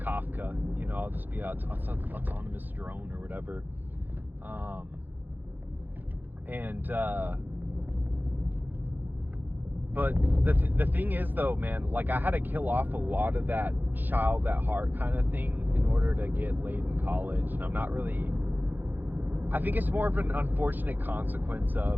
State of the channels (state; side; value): late; left; 0.087 ms